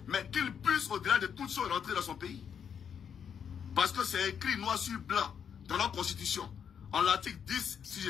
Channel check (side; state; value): right; quieter; 7.7 dB